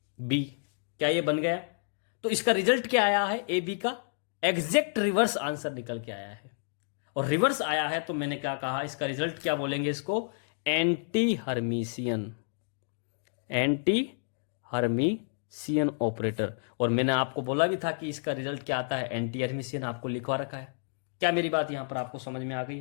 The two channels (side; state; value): right; silent; digital silence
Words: B. क्या ये बन गया? तो इसका रिजल्ट क्या आया है? ए बी का एग्जैक्ट रिवर्स आंसर निकल के आया है। और रिवर्स आया है तो मैंने क्या कहा? इसका रिजल्ट क्या बोलेंगे? इसको anti Hermitian, anti Hermitian operator. और मैंने आपको बोला भी था कि इसका रिजल्ट क्या आता है? Anti Hermitian. आपको लिखवा रखा है। क्या मेरी बात यहां पर आपको समझ में आ गई